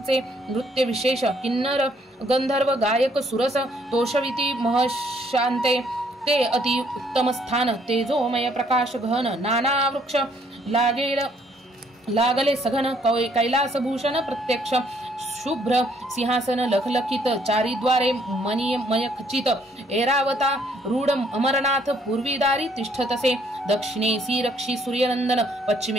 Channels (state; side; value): normal; both; correlation 0.66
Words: नृत्य विशेष किन्नर गंधर्व गायक सुरस तोषविती महशांते ते अति उत्तम स्थान तेजोमय प्रकाश घन नाना वृक्ष लागले सघन कैलास भूषण प्रत्यक्ष शुभ्र सिंहासन लखलखित चारिद्वारे मणिमय खचित ऐरावता रूढ अमरनाथ पूर्वीदारी तिष्ठतसे दक्षिणेसी रक्षी सूर्यनंदन